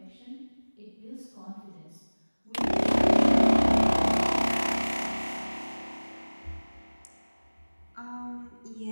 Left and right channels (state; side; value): inverted; both; correlation -1.00